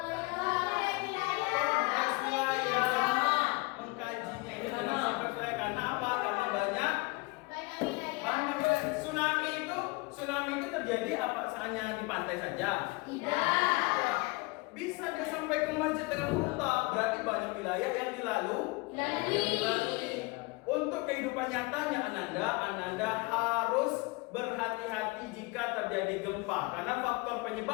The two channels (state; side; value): quieter; right; 25.8 dB